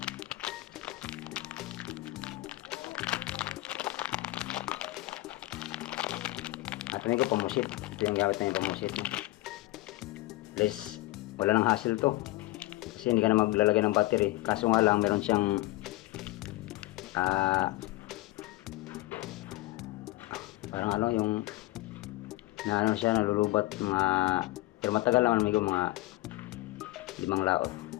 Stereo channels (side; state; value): right; quieter; 18.7 dB